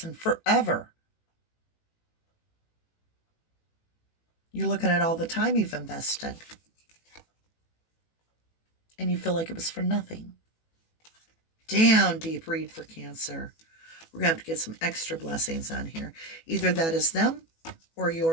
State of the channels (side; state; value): right; late; 18 ms